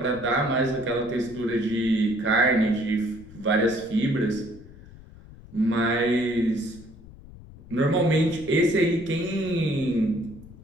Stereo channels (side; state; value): left; noise; rumble, 19 dB below the sound